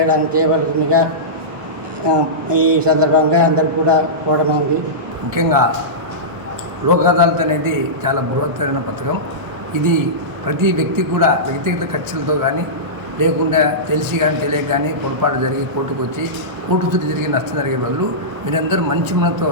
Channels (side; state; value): left; late; 1.1 ms